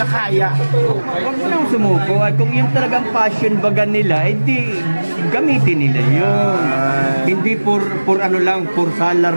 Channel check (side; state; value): both; inverted; correlation -1.00